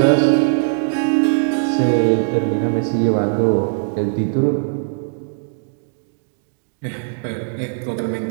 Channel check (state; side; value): silent; left; digital silence